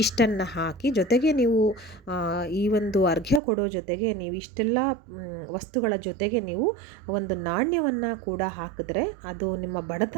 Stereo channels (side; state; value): left; drops out; at 3.4 s